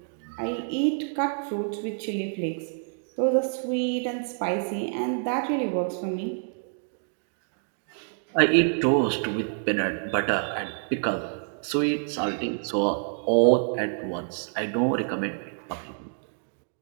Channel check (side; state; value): left; silent; digital silence